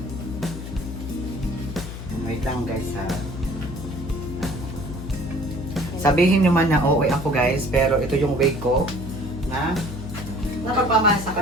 Wait lang guys ha. Sabihin nyo man na okay ako guys, pero ito yung way ko na napagpamahal sa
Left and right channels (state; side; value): noise; left; hum, 9 dB below the sound